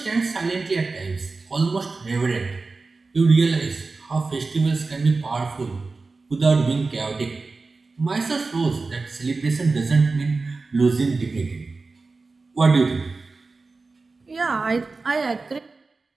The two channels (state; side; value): quieter; left; 3.9 dB